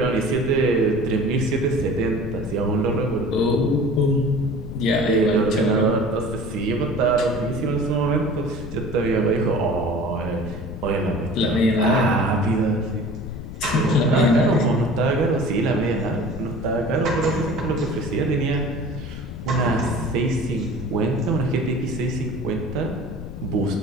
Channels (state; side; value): noise; left; rumble, 10 dB below the sound